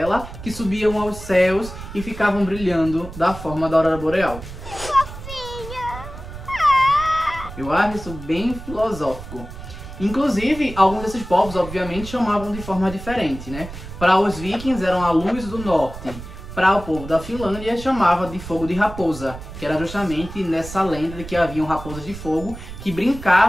que subiam aos céus e ficavam brilhando da forma da aurora boreal. Eu acho isso bem filosófico. Inclusive, alguns desses povos, obviamente, chamavam de forma diferente, né? Para os vikings, eram a luz do norte. Para o povo da Finlândia, chamava de fogo de raposa, que era justamente nessa lenda de que haviam raposas de fogo que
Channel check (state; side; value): noise; right; rumble, 12 dB below the sound